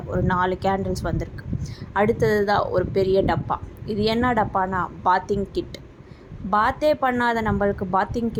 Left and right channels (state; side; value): identical; both; correlation 1.00